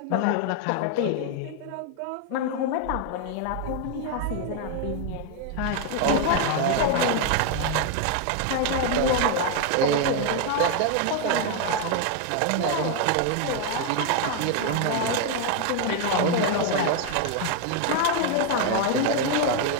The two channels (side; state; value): both; different; correlation 0.01